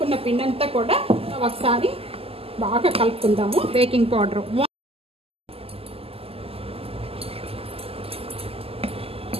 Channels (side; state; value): left; late; 0.28 ms